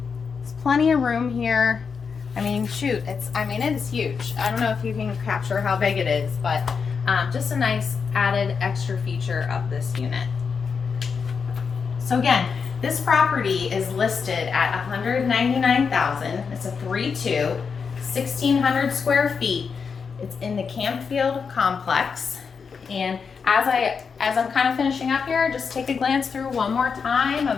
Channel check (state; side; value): quieter; right; 5.8 dB